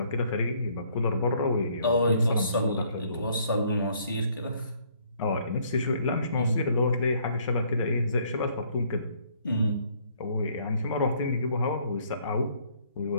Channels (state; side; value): inverted; both; correlation -0.64